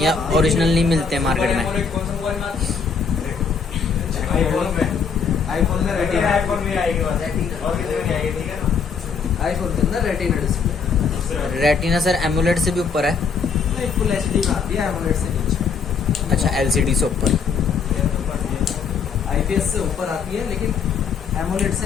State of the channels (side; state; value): right; quieter; 5.8 dB